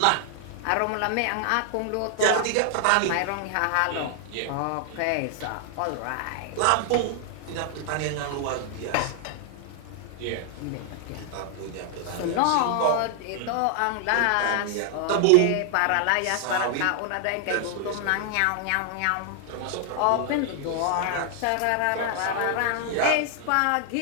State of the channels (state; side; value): different; both; correlation 0.00